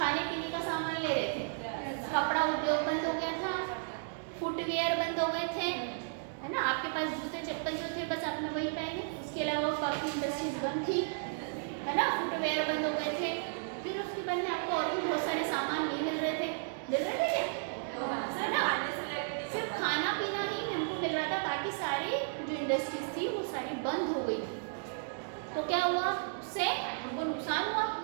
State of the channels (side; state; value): left; silent; digital silence